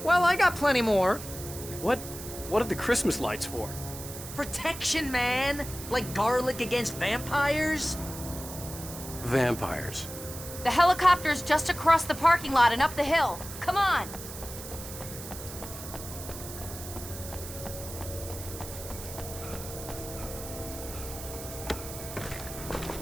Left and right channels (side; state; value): right; noise; hiss, 11 dB below the sound